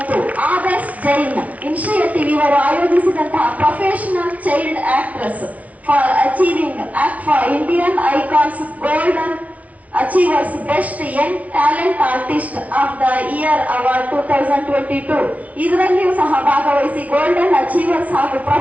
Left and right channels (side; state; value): left; late; 0.068 ms